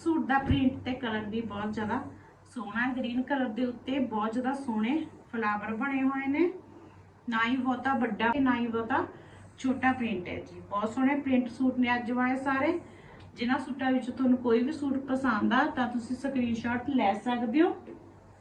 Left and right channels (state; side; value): identical; both; correlation 1.00